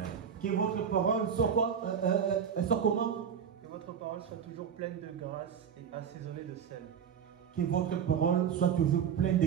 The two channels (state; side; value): quieter; left; 7.7 dB